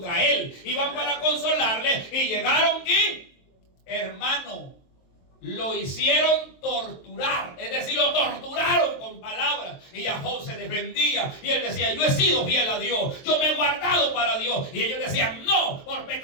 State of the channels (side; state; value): right; late; 23 ms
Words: él, iban para consolarle y llegaron y, hermano, lo hicieron torturar, es decir, lo torturaron con palabras, y a Job se defendía y él decía, yo he sido fiel a Dios, yo me he guardado para Dios, y ellos decían, no, por